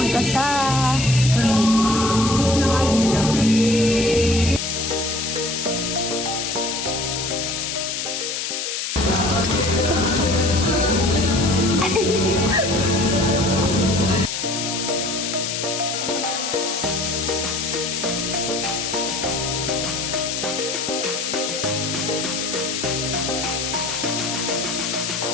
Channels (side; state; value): left; noise; hiss, 3 dB below the sound